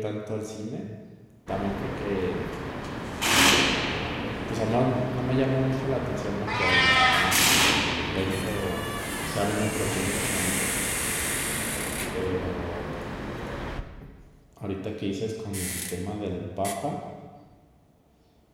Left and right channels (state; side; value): identical; both; correlation 1.00